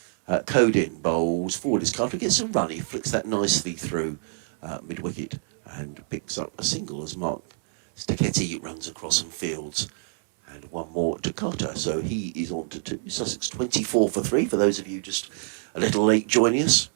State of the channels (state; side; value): silent; left; digital silence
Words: Code in bowls, forward is Carter, gets some run, he flicks that nicely through mid-wicket and picks up a single as Mark Stacchetti runs across and fields, and one more to Carter, so he is on to 2. Sussex 24 for 3, for those of you just a little late joining us.